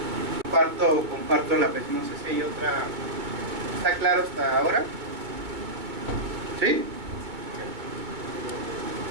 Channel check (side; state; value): left; late; 2.2 ms